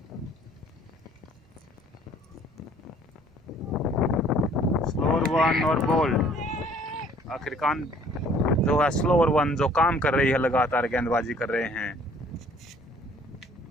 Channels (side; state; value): both; normal; correlation 0.57